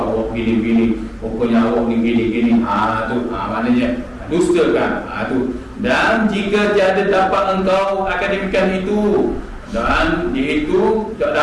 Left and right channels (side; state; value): both; identical; correlation 1.00